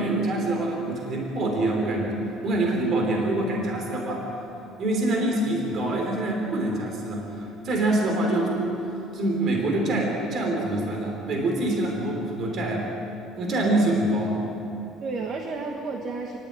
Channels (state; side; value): normal; both; correlation 0.55